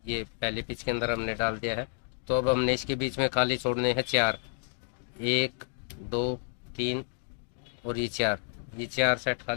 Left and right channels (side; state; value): right; silent; 58 dB below the other